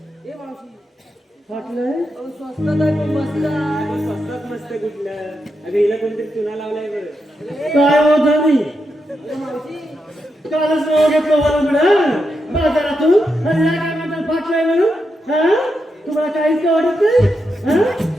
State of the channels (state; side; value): normal; both; correlation 0.85